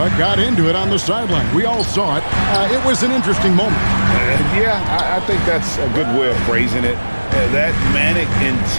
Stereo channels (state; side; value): inverted; both; correlation -1.00